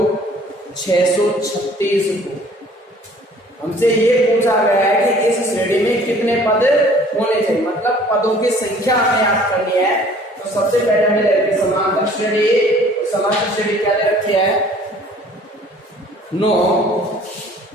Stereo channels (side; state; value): both; normal; correlation 0.53